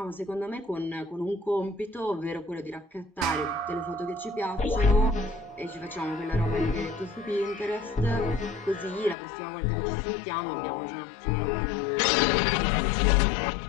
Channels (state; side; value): drops out; right; at 9.2 s